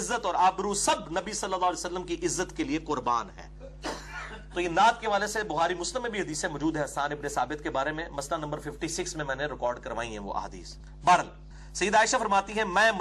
اور آبرو سب نبی صلی اللہ علیہ وسلم کی عزت کے لیے قربان ہے. تو یہ نعت کے والے سے بخاری مسلم میں بھی حدیثیں موجود ہے حسان ابن ثابت کے بارے میں، مسئلہ نمبر 56 میں نے ریکارڈ کروائی ہیں وہ احادیث. بہرحال سیدہ عائشہ فرماتی ہیں میں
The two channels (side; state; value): both; identical; correlation 1.00